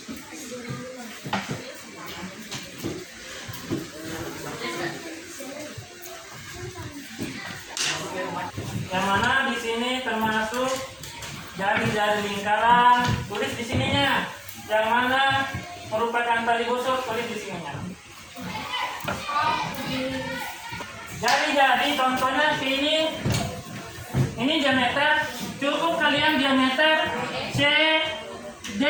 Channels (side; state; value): both; identical; correlation 1.00